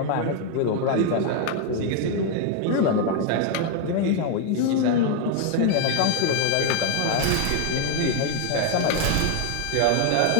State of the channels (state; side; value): different; both; correlation 0.00